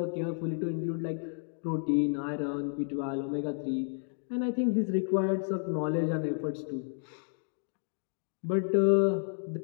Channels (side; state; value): right; silent; digital silence